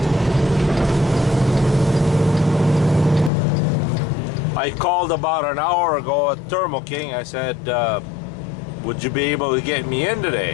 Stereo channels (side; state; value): right; drops out; at 3.3 s